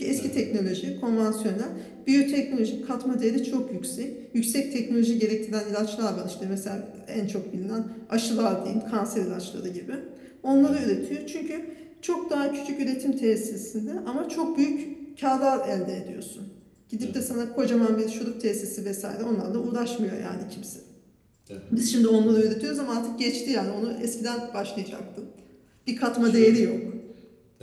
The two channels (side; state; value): both; identical; correlation 1.00